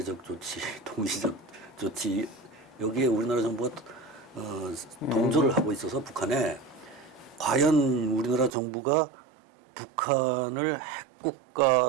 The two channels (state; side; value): drops out; left; at 8.5 s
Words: 조치, 동시적 조치 여기에 우리나라 정부가 동조를 하고 있어서 북한에 과연 우리나라 정부가 북한을